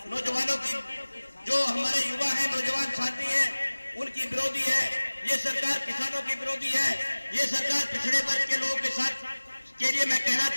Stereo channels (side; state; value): both; inverted; correlation -1.00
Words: नौजवानों की, जो हमारे युवा है, नौजवान साथी है, उनकी विरोधी है। ये सरकार किसानों की विरोधी है। ये सरकार पिछड़े वर्ग के लोगों के साथ के लिए मैं कहना